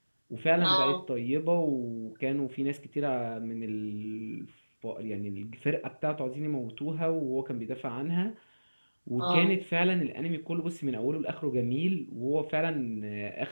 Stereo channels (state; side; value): inverted; both; correlation -1.00